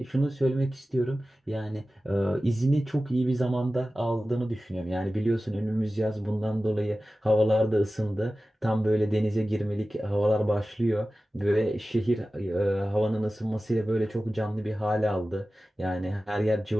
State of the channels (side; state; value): both; normal; correlation 0.95